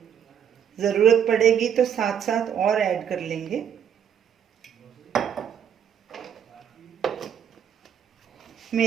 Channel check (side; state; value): left; quieter; 8.5 dB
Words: ज़रूरत पड़ेगी तो साथ साथ और ऐड कर लेंगे।